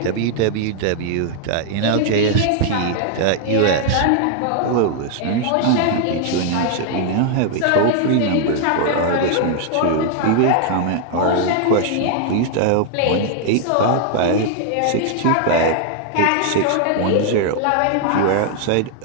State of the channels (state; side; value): different; both; correlation 0.00